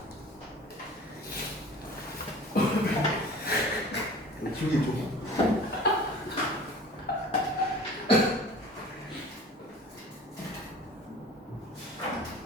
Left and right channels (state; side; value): normal; both; correlation 0.43